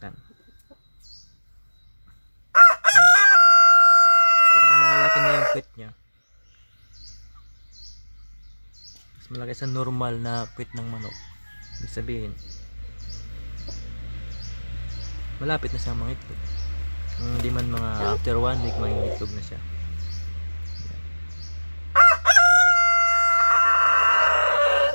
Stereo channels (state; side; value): inverted; both; correlation -1.00